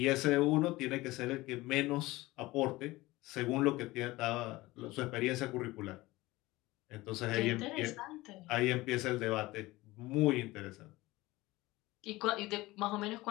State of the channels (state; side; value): quieter; right; 19.6 dB